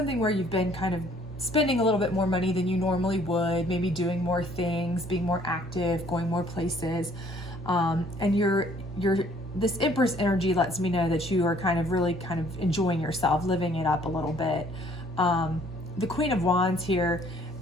where you've been kind of spending a little bit more money than you normally would, maybe doing more things, being more active, going more places. And this Empress energy lets me know that you are really enjoying yourself, living it up a little bit. The Queen of Wands here,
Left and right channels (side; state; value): right; noise; hum, 15 dB below the sound